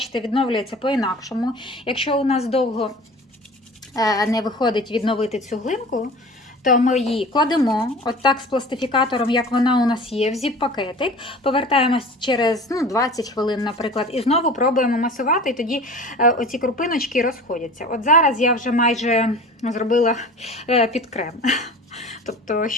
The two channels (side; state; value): both; normal; correlation 0.39